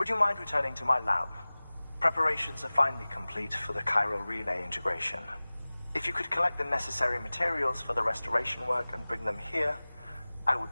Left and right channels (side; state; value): both; inverted; correlation -0.99